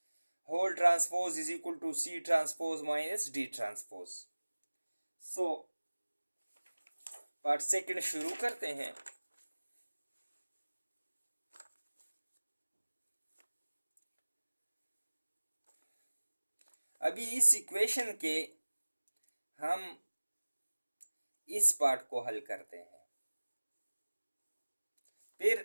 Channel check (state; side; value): inverted; both; correlation -1.00